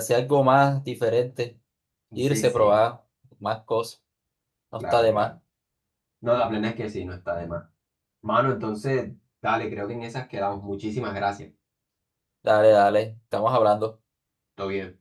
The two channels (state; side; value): identical; both; correlation 1.00